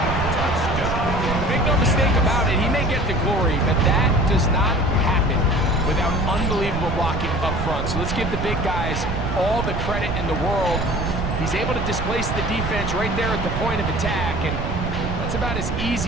Make no mistake about it, he may get the glory, but that does not happen without unbelievable blocking up front. So let's give the big guys all the credit in the world. He's able to displace the defense right there at the point of attack, and that's about as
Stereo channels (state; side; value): noise; right; rumble, 3 dB below the sound